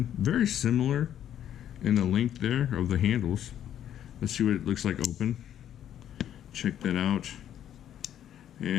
Very similar in the length there of the handles. Let's see what it looks like open. Check that out.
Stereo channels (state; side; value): quieter; right; 10.5 dB